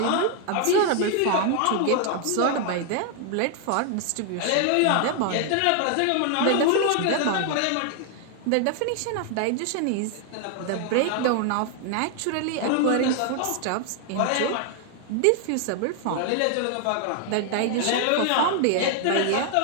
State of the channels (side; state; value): both; different; correlation 0.00